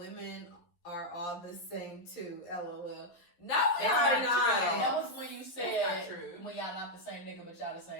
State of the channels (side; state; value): right; late; 11 ms